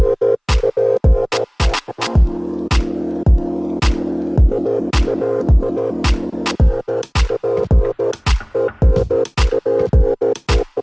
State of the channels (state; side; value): identical; both; correlation 1.00